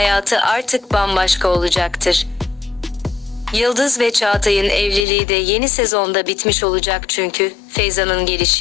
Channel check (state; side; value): drops out; right; at 5.1 s